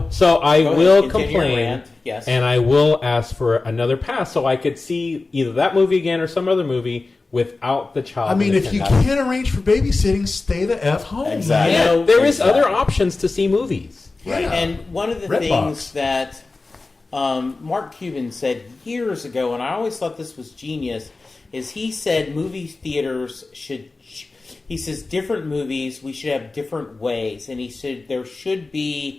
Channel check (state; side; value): quieter; right; 3.6 dB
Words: so I Go will ahead, continue your complain, rant. Yes. and I will ask for another pass so I could see either that movie again or some other movie without the child. I mean, in if it. you can't arrange for babysitting, stay the F home. Exactly. man. know, there is Exactly. other options to see movies. Right. And one of the Redbox. things that Mark Cuban said years ago, and I always thought this was genius, is he said movie theaters should. He says different movies we should have different ways, and he said there should